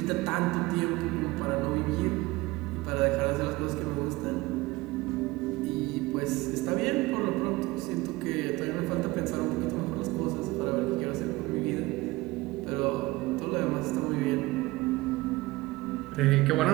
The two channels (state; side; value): quieter; left; 20.5 dB